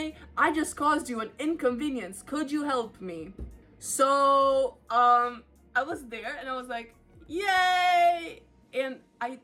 I just caused you an inconvenience. Could you help me? So, I was there and I was like, yay! And I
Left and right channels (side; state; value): both; identical; correlation 1.00